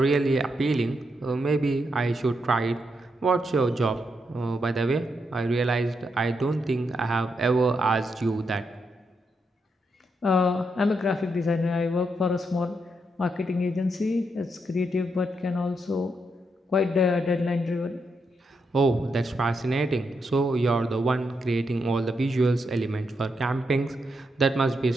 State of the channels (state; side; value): normal; both; correlation 0.82